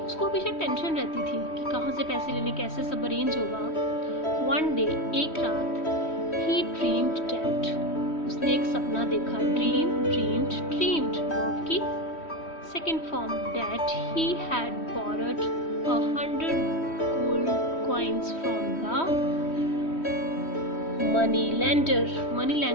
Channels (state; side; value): late; right; 3.1 ms